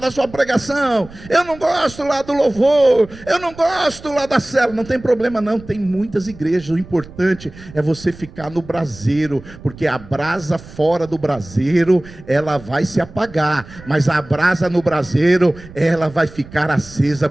sua pregação. Eu não gosto lá do louvor. Eu não gosto lá da célula. Não tem problema não, tem muitas igrejas. O importante é você ficar no braseiro, porque a brasa fora do braseiro, ela vai se apagar, mas a brasa no braseiro, ela vai ficar acesa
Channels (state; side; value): noise; right; rumble, 19 dB below the sound